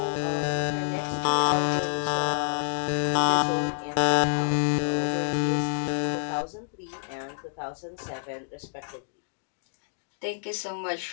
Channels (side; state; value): right; silent; digital silence